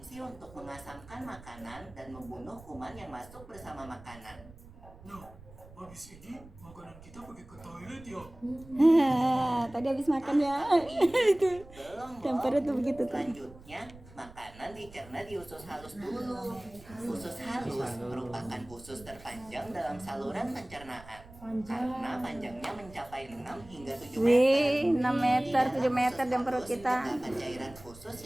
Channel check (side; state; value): right; noise; rumble, 20 dB below the sound